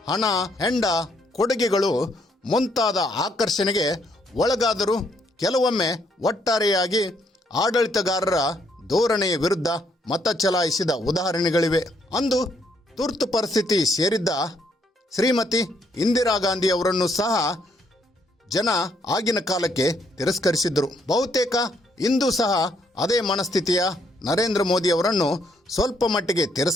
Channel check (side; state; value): both; normal; correlation 0.71